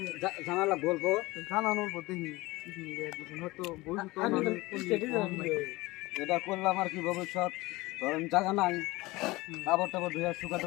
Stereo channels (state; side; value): quieter; right; 20.8 dB